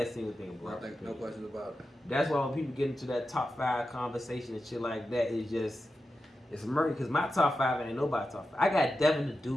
single thing about I think no question about it. That's why when people get into that top 5 conversation and shit like that, it's murky. Because my top 5 ain't nobody top 5. I got Devin the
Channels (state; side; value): normal; both; correlation 0.90